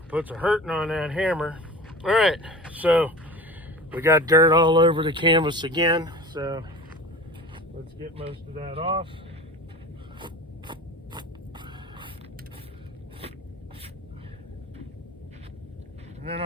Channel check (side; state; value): both; normal; correlation 0.36